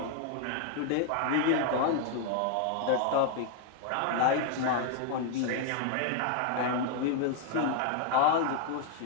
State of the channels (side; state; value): both; different; correlation 0.00